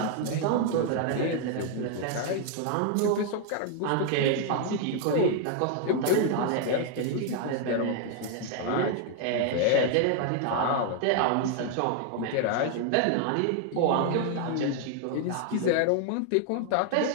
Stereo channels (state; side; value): different; both; correlation 0.00